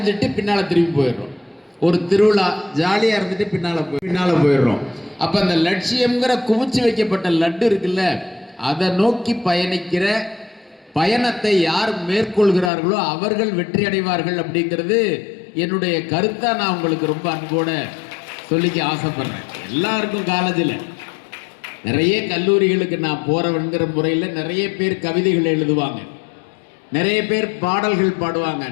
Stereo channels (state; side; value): drops out; right; at 12.7 s